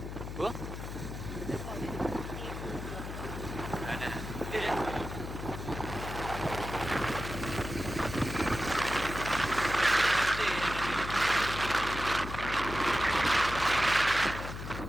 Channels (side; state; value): left; noise; hum, 8 dB below the sound